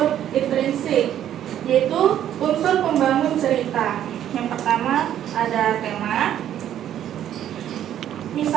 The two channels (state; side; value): quieter; left; 10.9 dB